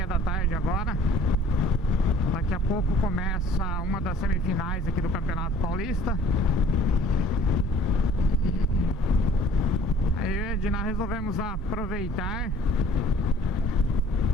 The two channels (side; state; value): both; normal; correlation 0.53